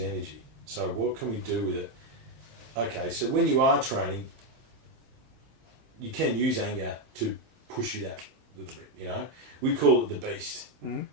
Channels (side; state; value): left; late; 27 ms